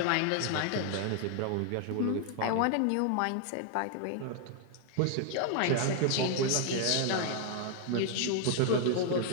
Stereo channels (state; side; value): different; both; correlation 0.00